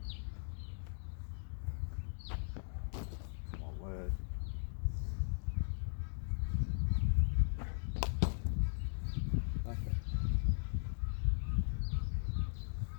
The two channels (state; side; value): silent; right; digital silence